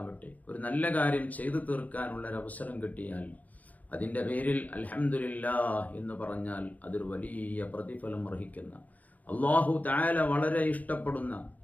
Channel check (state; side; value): late; right; 0.077 ms